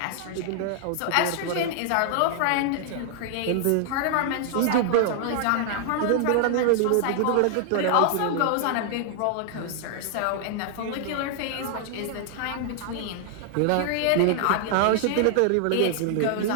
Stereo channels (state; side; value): different; both; correlation 0.00